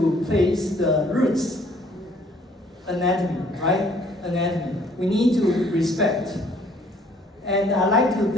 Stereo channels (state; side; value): normal; both; correlation 0.60